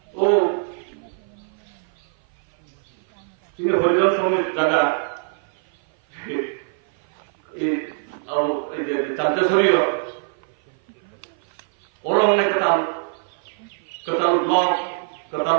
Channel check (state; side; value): silent; left; 56 dB below the other